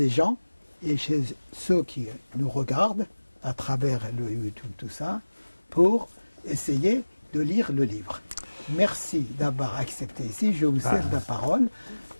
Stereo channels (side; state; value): both; inverted; correlation -1.00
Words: gens et chez ceux qui nous regardent à travers le YouTube, tout ça, pour essayer de lire le livre. Merci d'avoir accepté ici. Je vous cède la parole.